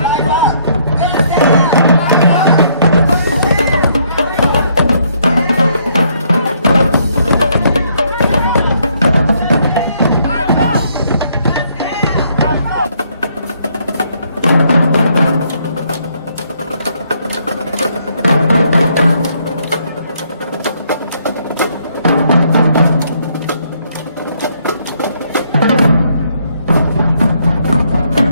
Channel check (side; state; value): both; inverted; correlation -0.69